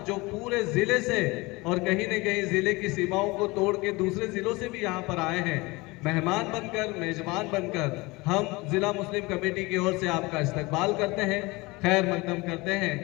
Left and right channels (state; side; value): quieter; right; 23.5 dB